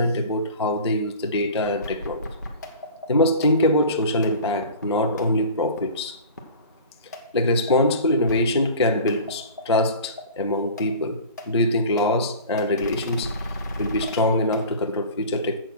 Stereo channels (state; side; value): inverted; both; correlation -0.39